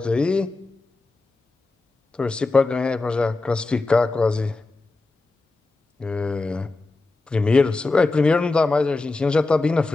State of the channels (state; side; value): quieter; right; 3.4 dB